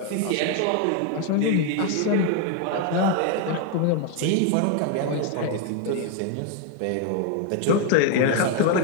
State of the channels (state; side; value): different; both; correlation 0.01